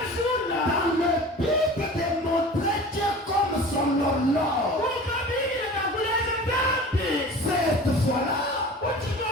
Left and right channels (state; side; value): normal; both; correlation 0.39